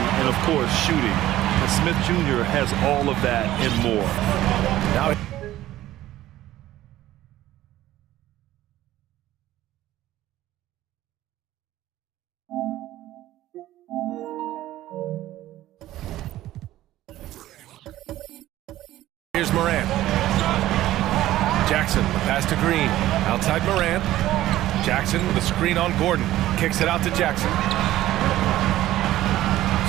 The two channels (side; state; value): left; quieter; 14.6 dB